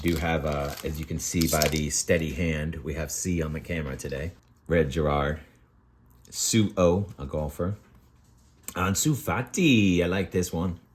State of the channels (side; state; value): both; identical; correlation 1.00